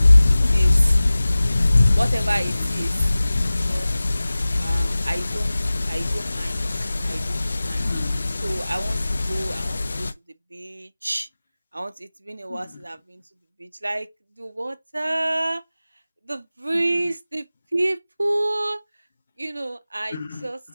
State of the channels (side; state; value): both; inverted; correlation -0.97